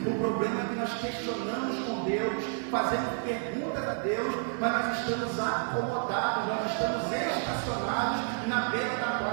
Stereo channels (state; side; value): silent; left; 58 dB below the other